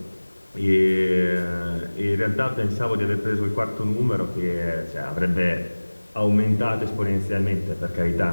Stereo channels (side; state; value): both; inverted; correlation -1.00